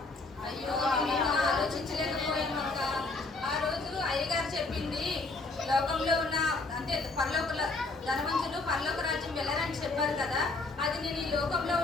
అయ్యో మేము ఆలోచించలేకపోయామక్క. ఆ రోజు అయ్యగారు చెప్పింది లోక ధనవంతులు పరలోక రాజ్యం వెళ్ళరని చెప్పారు కదా, అది నేను ఈ లోకంలో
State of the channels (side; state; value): right; quieter; 3.4 dB